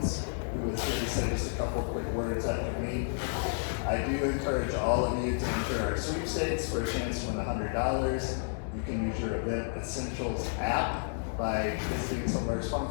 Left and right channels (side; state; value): right; silent; digital silence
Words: who was here to say just a couple quick words after me. I do encourage all of you to enter our sweepstakes for a chance to win $100. You can use your Event Essentials app by visiting some of our